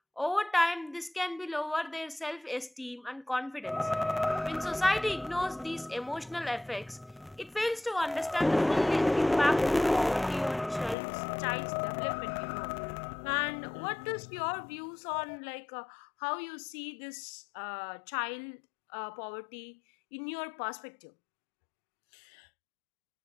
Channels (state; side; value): drops out; right; at 11.0 s